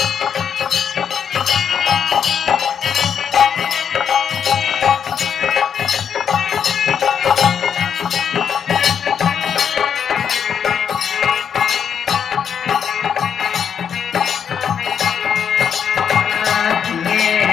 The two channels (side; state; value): right; quieter; 7.8 dB